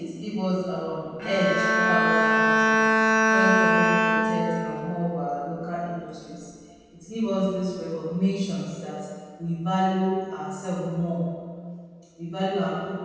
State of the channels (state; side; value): identical; both; correlation 1.00